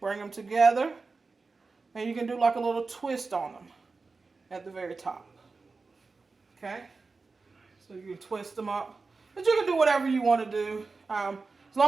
them together, and you can do like a little twist on them at the very top. Okay? So you can twist them up. But you can do whatever you want to do. As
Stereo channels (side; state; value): left; quieter; 4.1 dB